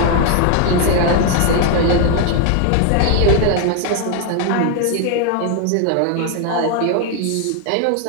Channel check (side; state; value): both; different; correlation 0.01